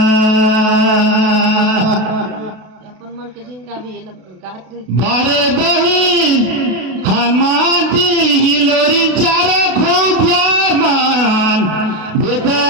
अपन मन के जिनका भी ये लोग गात रहे बारे बहिन हनुमान जी हिलोरी चारो खूब प्यार मान देते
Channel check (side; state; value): left; late; 32 ms